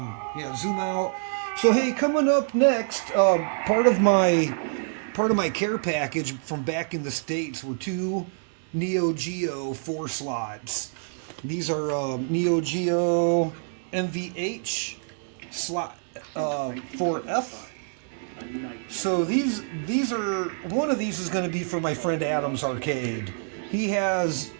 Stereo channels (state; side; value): silent; left; digital silence